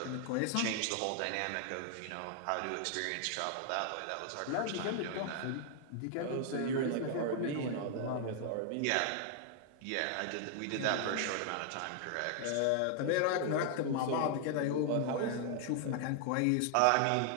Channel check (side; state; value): both; different; correlation 0.00